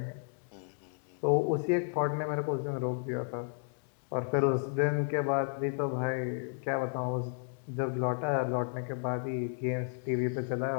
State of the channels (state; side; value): silent; right; digital silence